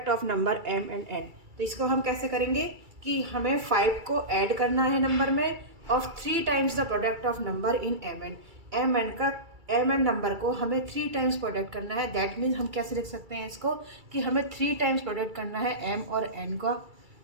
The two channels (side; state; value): left; late; 2.3 ms